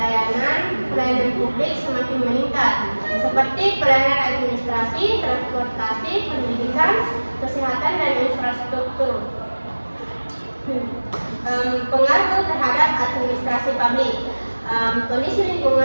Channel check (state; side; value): inverted; both; correlation -1.00